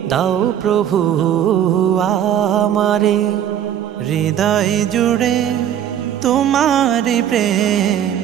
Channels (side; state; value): left; quieter; 10.0 dB